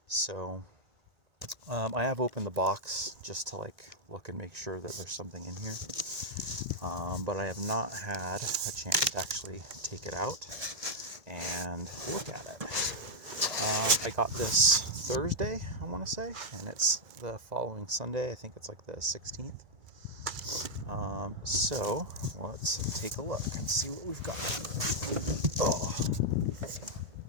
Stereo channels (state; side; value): late; left; 1.9 ms